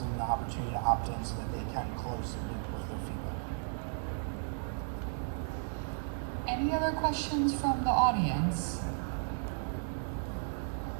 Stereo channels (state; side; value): silent; left; digital silence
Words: them the opportunity to opt in so that they can close the loop with their feedback. Any other questions from the audience?